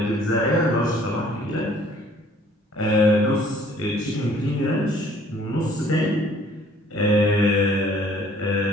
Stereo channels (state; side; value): normal; both; correlation 0.57